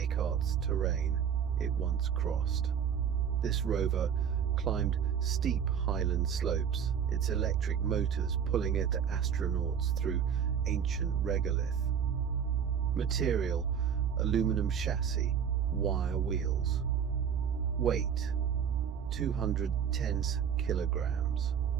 terrain it once crossed. This rover climbed steep highland slopes, its electric motors pulling at astronauts through ancient regolith. Material: aluminum chassis, wire wheels. Weight: 210 kilograms.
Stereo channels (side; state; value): left; quieter; 7.9 dB